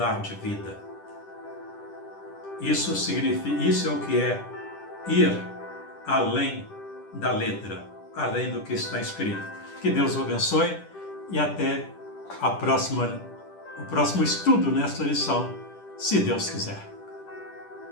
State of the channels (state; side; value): late; right; 10 ms